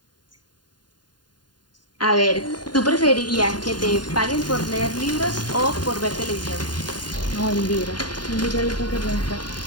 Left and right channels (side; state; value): right; late; 0.70 ms